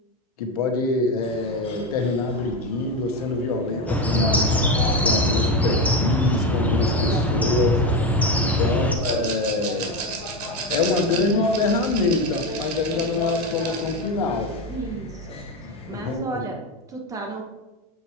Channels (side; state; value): both; normal; correlation 0.15